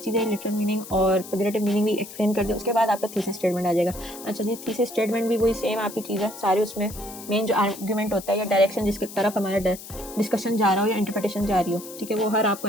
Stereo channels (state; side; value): noise; left; hiss, 14 dB below the sound